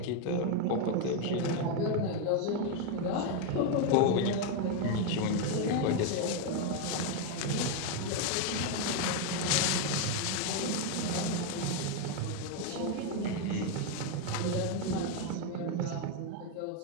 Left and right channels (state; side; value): different; both; correlation 0.01